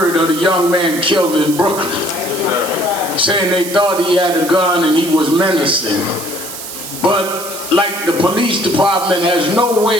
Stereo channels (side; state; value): right; noise; hiss, 10 dB below the sound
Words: of the young man killed in Brooklyn, saying they thought he had a gun and he was menacing. But like the police department has no